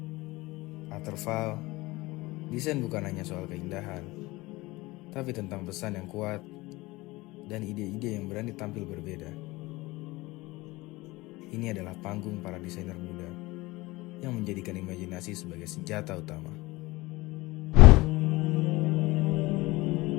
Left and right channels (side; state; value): right; quieter; 21.1 dB